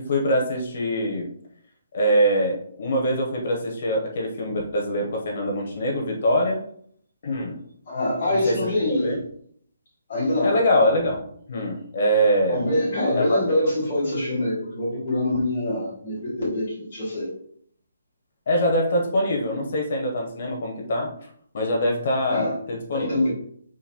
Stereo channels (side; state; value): both; inverted; correlation -0.66